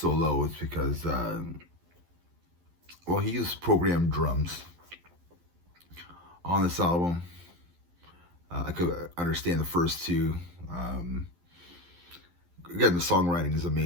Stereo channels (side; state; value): left; late; 12 ms